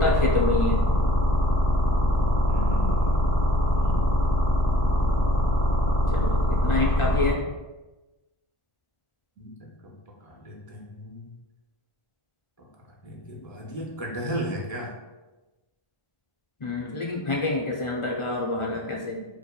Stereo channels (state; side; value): late; right; 1.4 ms